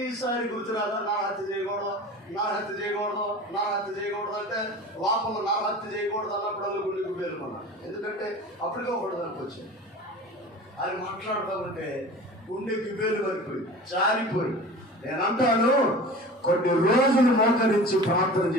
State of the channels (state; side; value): normal; both; correlation 0.38